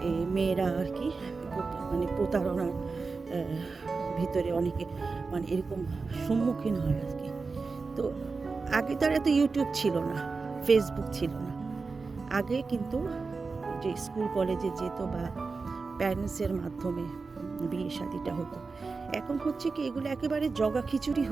মেয়েরা আর কি মানে প্রতারণার ভিতরে অনেকে মানে এরকম সম্মুখীন হয় আর কি। তো আগে তার এত ইউটিউব ছিল না, ফেসবুক ছিল না। আগে কিন্তু যে স্কুল কলেজে যেত বা প্যারেন্টসের মাধ্যমে বিয়ে শাদিটা হতো। এখন হচ্ছে কি এগুলো একেবারে জগা খিচুড়ি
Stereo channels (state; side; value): quieter; left; 4.3 dB